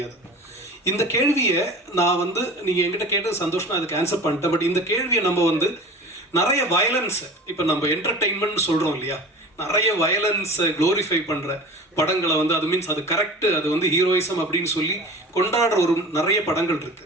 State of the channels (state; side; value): normal; both; correlation 0.37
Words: இந்த கேள்வியை நான் வந்து நீங்கள் என்கிட்ட கேட்டது சந்தோஷம், நான் அதுக்கு ஆன்சர் பண்ணிட்டேன். பட் இந்த கேள்வியை நம்ம வந்து நிறைய வயலன்ஸை, இப்போ நம்ம என்டர்டெயின்மெண்ட் சொல்கிறோம் இல்லையா, நிறைய வயலன்ஸை க்ளோரிஃபை பண்ணுற படங்களை வந்து அது மீன்ஸ் அது கரெக்டு, அது வந்து ஹீரோயிசம் அப்படின்னு சொல்லி கொண்டாடுற ஒரு நிறைய படங்கள்